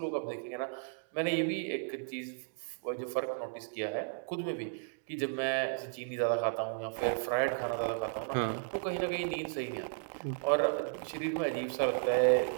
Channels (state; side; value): silent; left; digital silence